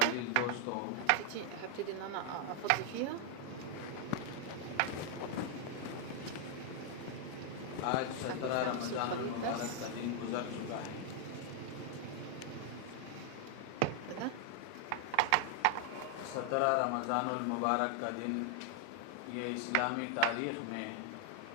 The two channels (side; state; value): both; different; correlation 0.00